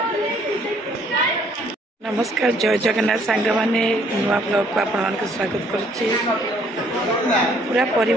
नमस्कार जय जगन्नाथ सांग मैंने नुआ ब्लॉग को आपण मान स्वागत करुच्ची पूरा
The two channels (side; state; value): both; normal; correlation 0.63